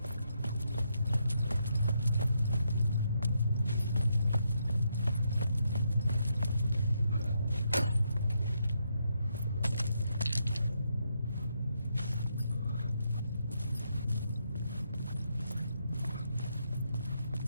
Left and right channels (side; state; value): both; inverted; correlation -0.79